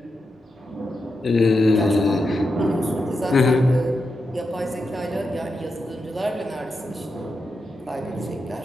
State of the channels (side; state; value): both; normal; correlation 0.87